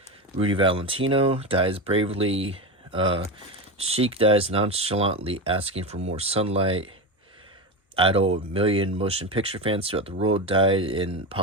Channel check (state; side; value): normal; both; correlation 0.19